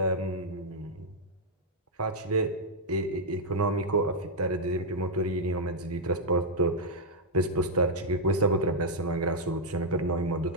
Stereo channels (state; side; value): normal; both; correlation -0.04